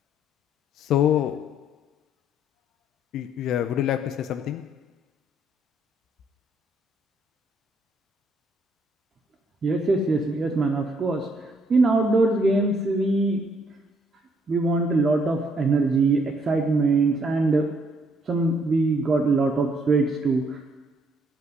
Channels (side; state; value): both; normal; correlation 0.68